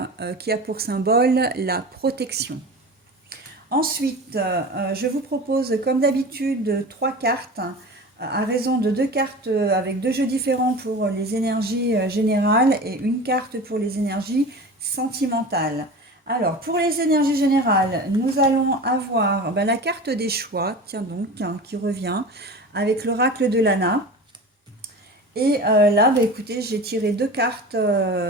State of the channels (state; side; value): normal; both; correlation 0.33